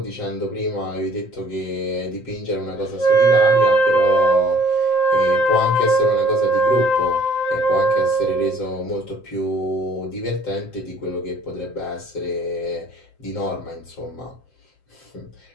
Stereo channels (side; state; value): right; late; 7.6 ms